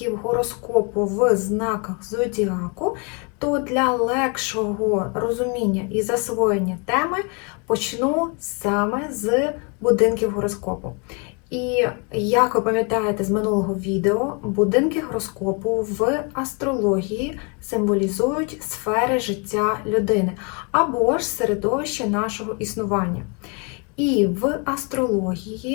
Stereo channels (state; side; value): quieter; right; 33.9 dB